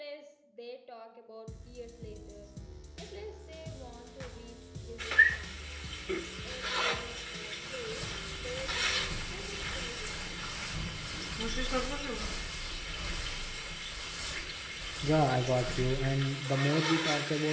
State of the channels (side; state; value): both; identical; correlation 1.00